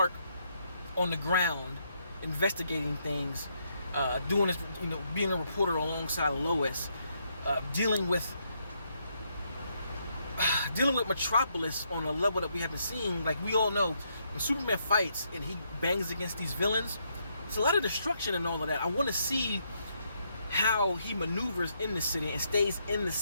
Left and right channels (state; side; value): inverted; both; correlation -0.76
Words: on the ground investigating things, doing this, being a reporter alongside Lois, dealing with Metropolis on a level that we haven't seen. Like, we all know when Superman fights and he bangs against these villains, it's a lot of destruction and all of that. I want to see how he maneuvers in the city and stays in the